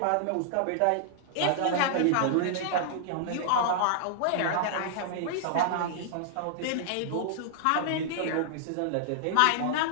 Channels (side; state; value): both; different; correlation -0.01